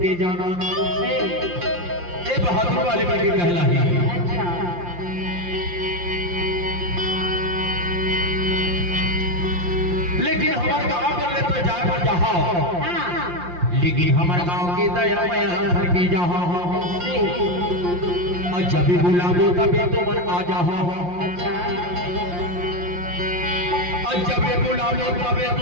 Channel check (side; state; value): left; late; 5.7 ms